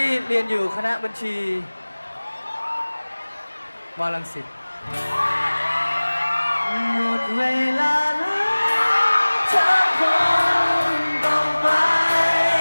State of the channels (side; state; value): both; inverted; correlation -1.00